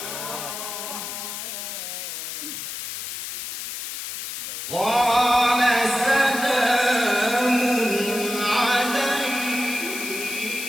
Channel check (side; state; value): left; noise; hiss, 6 dB below the sound